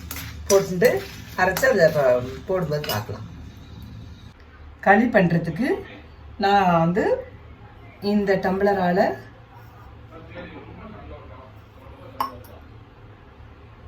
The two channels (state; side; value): identical; both; correlation 1.00